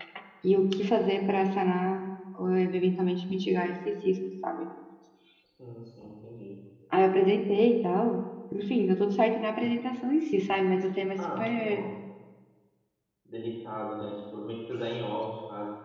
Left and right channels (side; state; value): both; identical; correlation 1.00